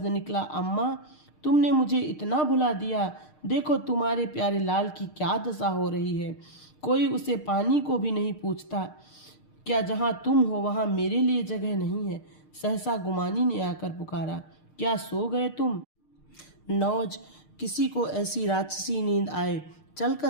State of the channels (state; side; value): late; right; 6.6 ms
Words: निकला, अम्मा तुमने मुझे इतना भुला दिया। देखो तुम्हारे प्यारे लाल की क्या दशा हो रही है। कोई उसे पानी को भी नहीं पूछता। क्या जहाँ तुम हो वहाँ मेरे लिए जगह नहीं है? सहसा गुमानी ने आकर पुकारा, क्या सो गए तुम? नौज, किसी को ऐसी राक्षसी नींद आए,